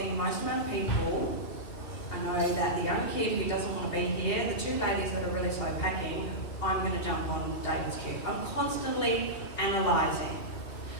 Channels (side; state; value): right; late; 2.8 ms